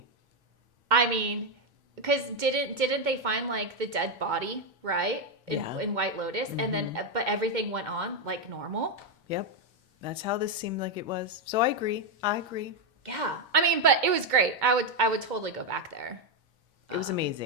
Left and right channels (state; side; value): late; left; 2.2 ms